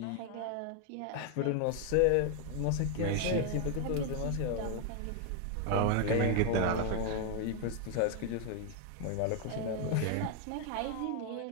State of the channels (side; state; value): both; different; correlation 0.00